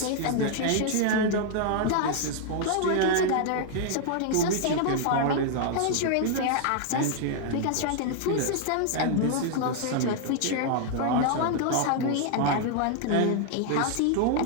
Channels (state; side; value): different; both; correlation 0.00